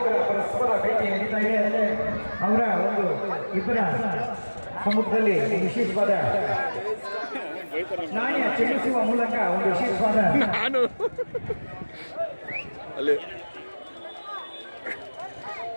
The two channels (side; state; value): both; inverted; correlation -1.00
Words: ಪರಸ್ಪರ ಭೇಟಿ ನಡೀತಾ ಇದೆ. ಅವರ ಒಂದು ಇಬ್ಬರ ಸಮ್ಮುಖದಲ್ಲಿ ವಿಶೇಷವಾದ ನಾಣ್ಯ ಚೆಲ್ಲಿಸುವ ಮೂಲಕ ಒಂದು ವಿಶೇಷವಾದ ನಾನು ಅಲ್ಲಿ